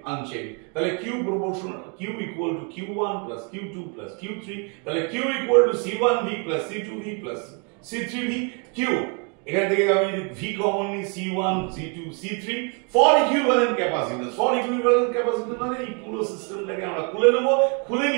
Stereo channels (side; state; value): left; quieter; 36.4 dB